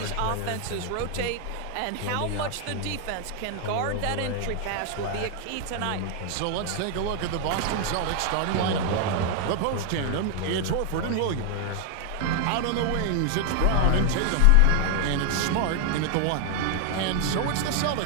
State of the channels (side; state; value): both; different; correlation 0.00